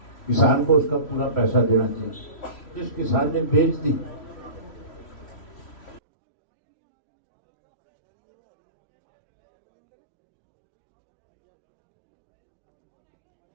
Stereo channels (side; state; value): right; late; 3.1 ms